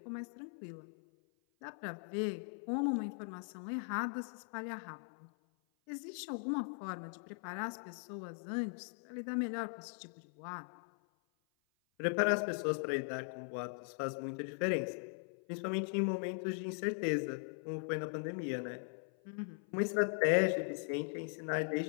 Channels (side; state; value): right; silent; 51 dB below the other